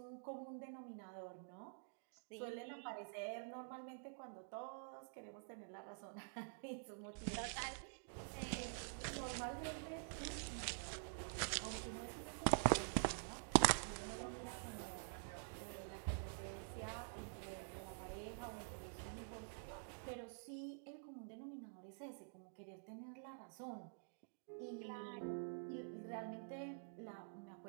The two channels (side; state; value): left; silent; digital silence